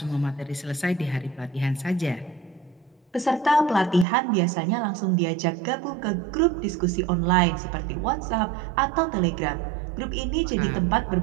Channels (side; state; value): left; drops out; at 4.0 s